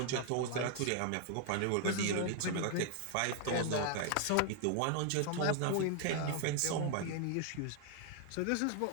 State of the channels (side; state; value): both; different; correlation 0.00